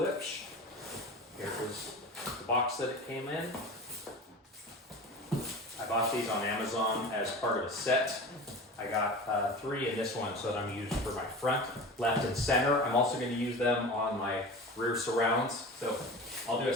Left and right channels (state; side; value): normal; both; correlation 0.33